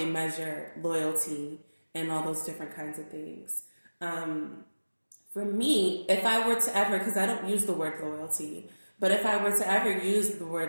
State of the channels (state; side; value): inverted; both; correlation -1.00